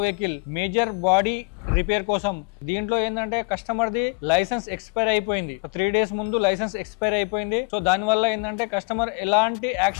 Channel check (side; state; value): right; quieter; 32.9 dB